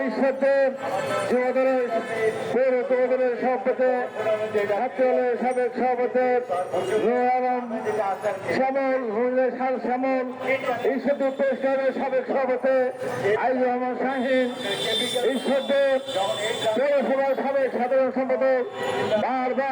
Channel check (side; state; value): both; identical; correlation 1.00